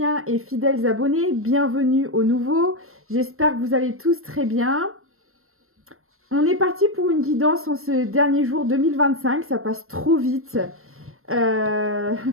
et fidèles abonnés, bienvenue aux nouveaux. J'espère que vous allez tous très bien. On est parti pour une guidance en ce dernier jour 2025, ça passe trop vite.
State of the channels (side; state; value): left; late; 0.62 ms